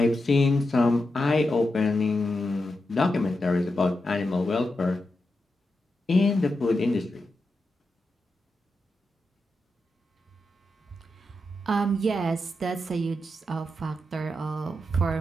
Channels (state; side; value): normal; both; correlation 0.88